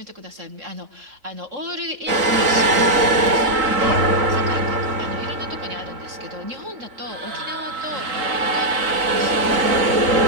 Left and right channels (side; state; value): left; late; 3.9 ms